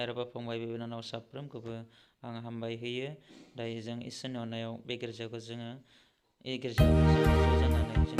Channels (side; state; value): both; identical; correlation 1.00